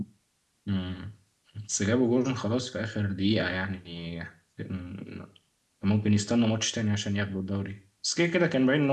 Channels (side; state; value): both; identical; correlation 1.00